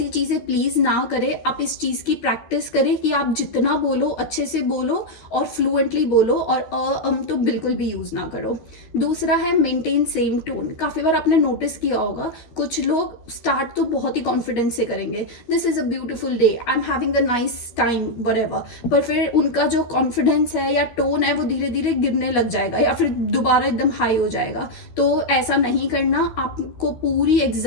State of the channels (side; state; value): right; late; 13 ms